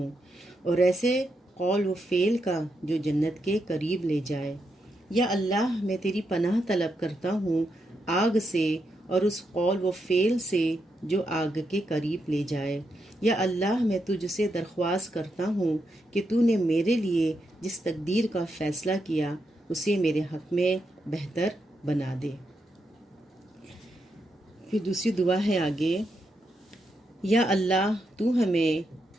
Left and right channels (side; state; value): both; normal; correlation 0.83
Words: اور ایسے قول و فعل کا جو جنت کے قریب لے جائے۔ یا اللہ، میں تیری پناہ طلب کرتا ہوں آگ سے اور اس قول و فعل سے جو آگ کے قریب لے جائے۔ یا اللہ، میں تجھ سے درخواست کرتا ہوں کہ تو نے میرے لیے جس تقدیر کا فیصلہ کیا اسے میرے حق میں بہتر بنا دے۔ پھر دوسری دعا ہے آگے، یا اللہ، تو ہمیں